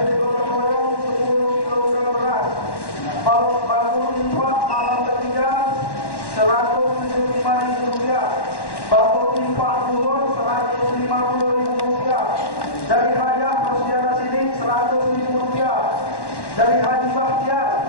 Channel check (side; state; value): right; late; 1.1 ms